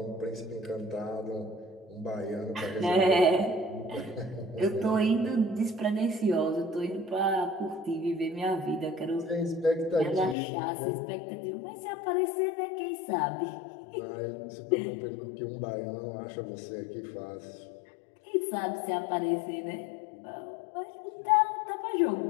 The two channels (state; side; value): drops out; right; at 10.4 s